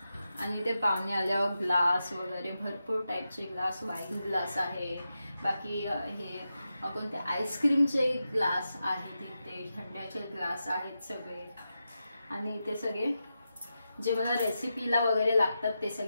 आणि ते पाहुणे आल्यावर ग्लास वगैरे भरपूर टाईपचे ग्लास, वाईन ग्लास आहे, बाकी हे कोणते आईस्क्रीमचे ग्लास आहेत, इथे थंड्याचे ग्लास आहेत सगळे. आणि इथे सगळे जे मला रेसिपीला वगैरे लागतात ते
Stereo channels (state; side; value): inverted; both; correlation -0.89